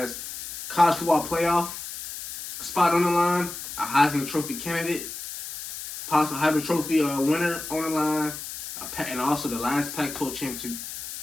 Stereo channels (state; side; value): noise; left; hiss, 9 dB below the sound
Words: college football playoff spot on the line, a Heisman Trophy candidate, possible Heisman Trophy winner on the line, and also the last Pac-12 championship